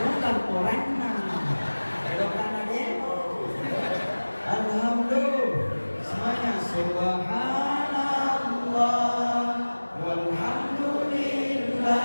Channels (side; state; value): both; inverted; correlation -1.00